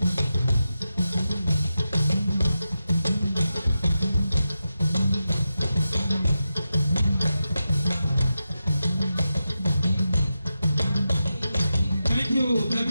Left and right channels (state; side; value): inverted; both; correlation -0.90